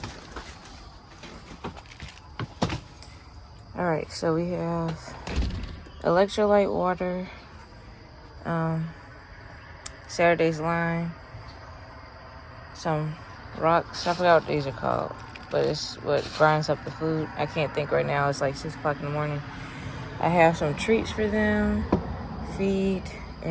Alright, so we have electrolyte water, Saturday's lime, some rocks. I forgot what these are called, but it's what grinds up the food. I can't think right now. It's like 6 o'clock in the morning. I have some treats for them, feed,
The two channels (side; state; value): both; identical; correlation 1.00